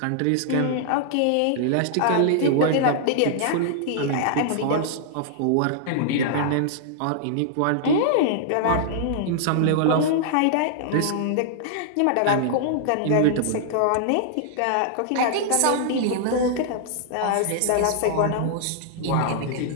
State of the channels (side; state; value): both; different; correlation -0.01